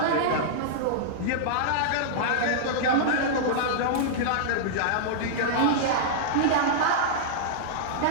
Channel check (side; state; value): both; different; correlation -0.02